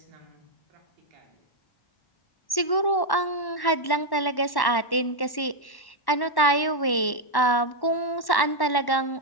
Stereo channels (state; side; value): late; right; 1.1 ms